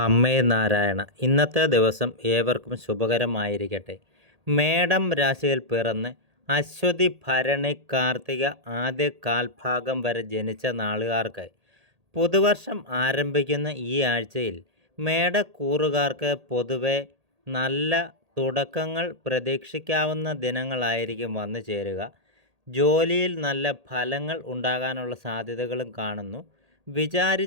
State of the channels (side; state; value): left; late; 1.8 ms